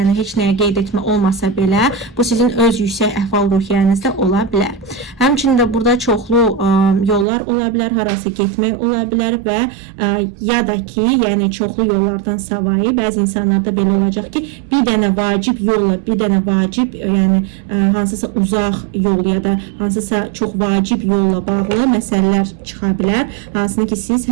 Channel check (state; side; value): drops out; left; at 7.2 s